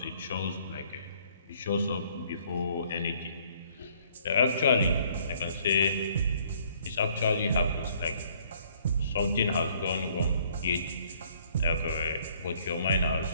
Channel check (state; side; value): inverted; both; correlation -0.62